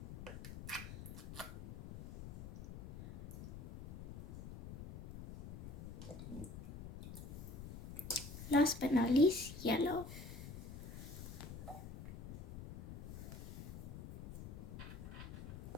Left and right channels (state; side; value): noise; left; rumble, 10 dB below the sound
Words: Last but not least, yellow.